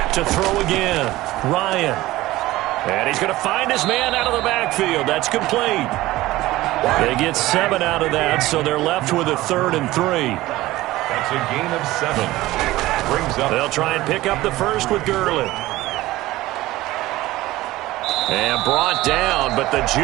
To throw again, Ryan. And he's going to find his man out of the backfield. That's complete. They get 7 out of that, so they're left with a 3rd and 3. That's a gain of 7. Brings up. They'll try and pick up the first with Gurley. And brought down, but the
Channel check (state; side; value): quieter; left; 17.4 dB